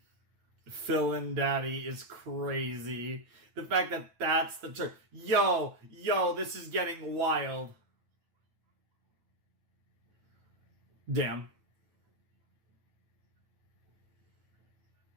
Villain Daddy is crazy. The fact that that's the term. Yo, this is getting wild. Damn.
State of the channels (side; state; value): left; late; 9.1 ms